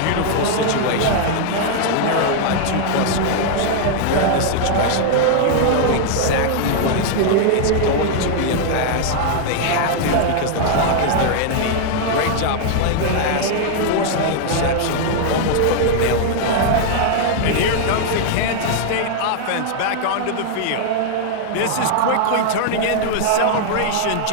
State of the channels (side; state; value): both; different; correlation -0.01